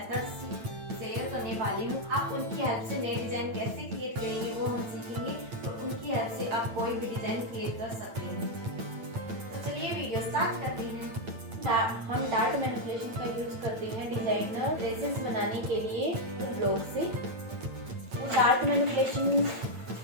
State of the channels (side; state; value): left; late; 8.9 ms